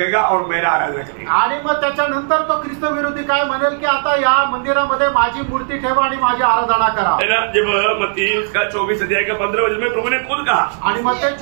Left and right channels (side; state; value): left; silent; digital silence